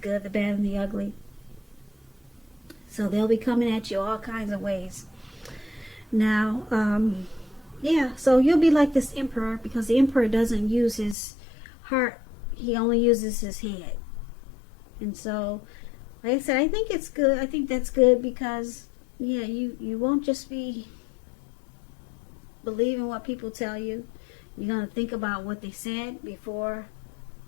the Bad, and the Ugly. So they'll be coming at you all kinds of ways. Now, yeah, so you'll be like this Emperor, because the Emperor doesn't use his heart. He only uses his head. And so, like I said, I think it's good. I think that's good because, yeah, you won't just be believing what people tell you. You're going to think about what they said before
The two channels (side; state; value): right; drops out; at 11.2 s